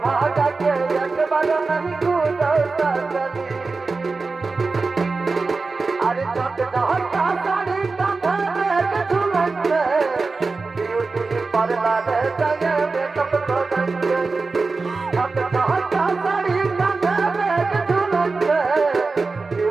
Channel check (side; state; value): left; quieter; 4.0 dB